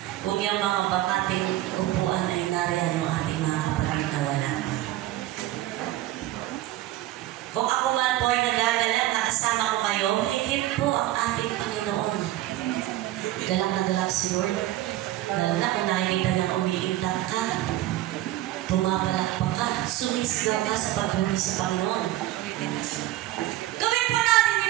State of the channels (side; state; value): left; quieter; 15.2 dB